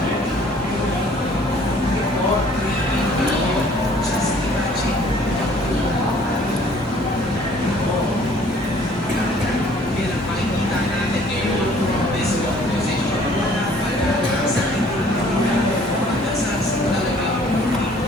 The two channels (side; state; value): both; normal; correlation 0.56